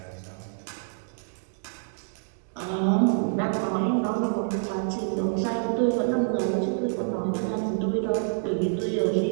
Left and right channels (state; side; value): silent; left; digital silence